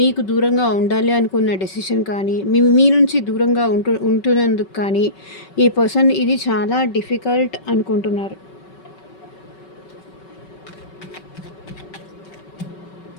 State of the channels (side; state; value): right; late; 5.3 ms